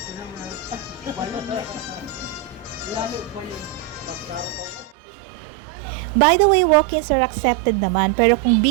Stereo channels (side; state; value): left; drops out; at 5.0 s